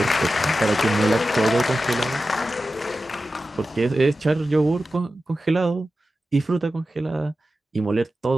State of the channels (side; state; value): both; normal; correlation 0.93